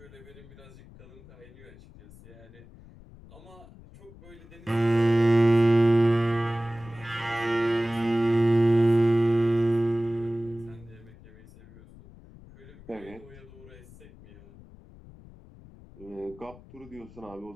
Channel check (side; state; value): left; noise; rumble, 21 dB below the sound